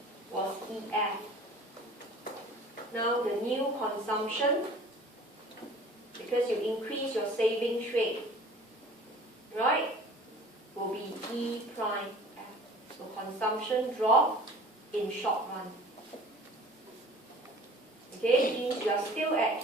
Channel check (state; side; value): normal; both; correlation 0.46